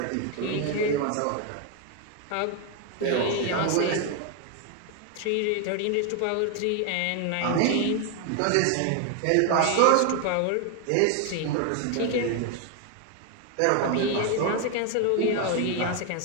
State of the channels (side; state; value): both; different; correlation 0.01